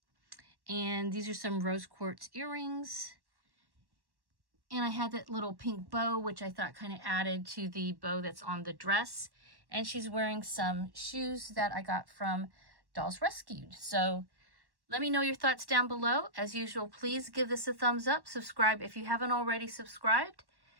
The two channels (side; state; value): left; late; 1.1 ms